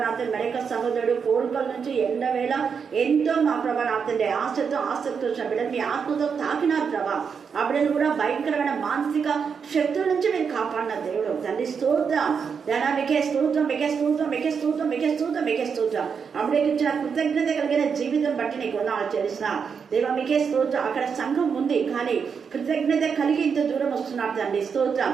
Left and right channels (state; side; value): quieter; left; 6.3 dB